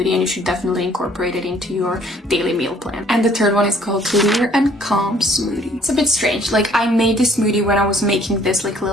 and you should definitely incorporate it into your daily meal plan. And the third one is called Clear and Calm Smoothie. It's a bit strange. Like, I made this smoothie when I was making this like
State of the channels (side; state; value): both; normal; correlation 0.59